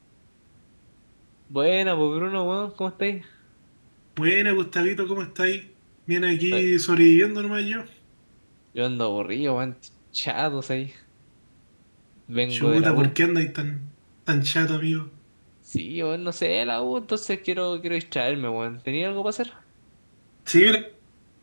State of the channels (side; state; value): both; inverted; correlation -1.00